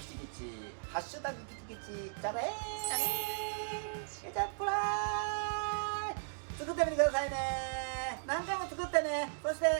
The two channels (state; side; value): silent; left; digital silence